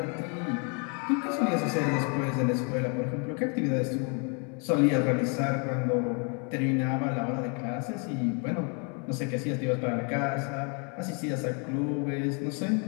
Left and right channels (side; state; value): right; quieter; 36.9 dB